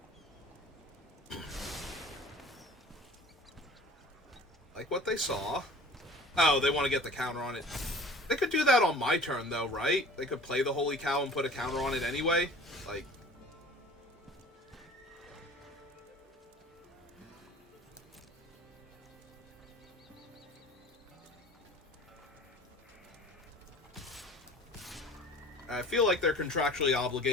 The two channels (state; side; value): normal; both; correlation 0.44